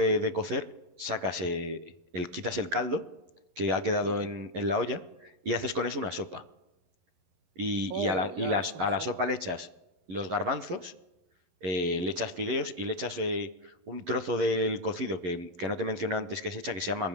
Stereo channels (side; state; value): left; late; 11 ms